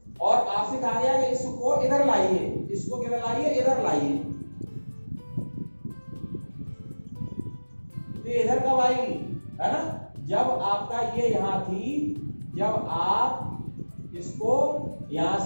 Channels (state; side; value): inverted; both; correlation -1.00